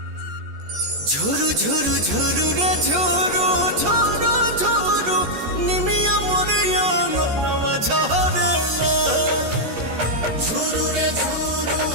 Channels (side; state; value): left; late; 14 ms